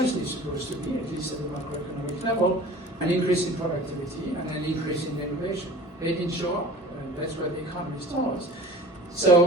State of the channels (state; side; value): normal; both; correlation 0.42